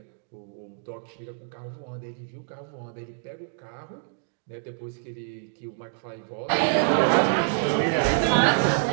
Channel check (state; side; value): silent; left; digital silence